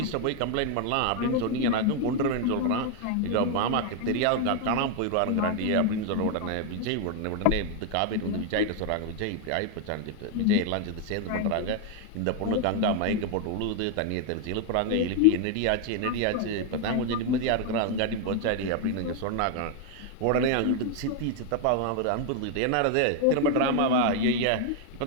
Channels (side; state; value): both; different; correlation 0.01